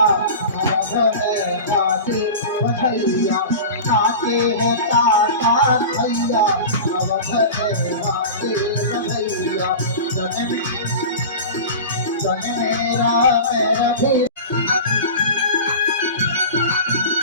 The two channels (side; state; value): both; inverted; correlation -0.32